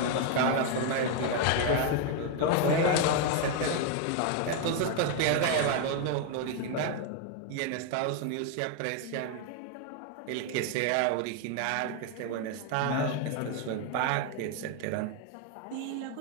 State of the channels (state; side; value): different; both; correlation 0.01